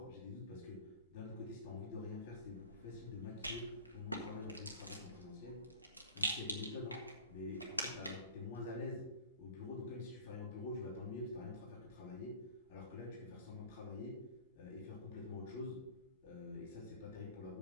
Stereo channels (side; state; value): both; inverted; correlation -0.41